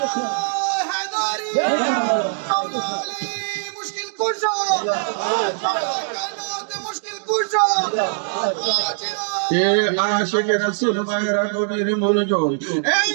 মুশকিল কুশো মুশকিল কুশো এ আশিক রাসূল ভাইরা গভীর মনোযোগ। এই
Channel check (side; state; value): left; silent; digital silence